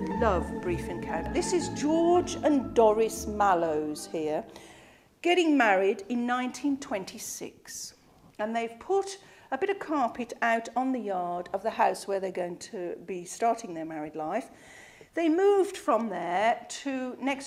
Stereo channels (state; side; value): identical; both; correlation 1.00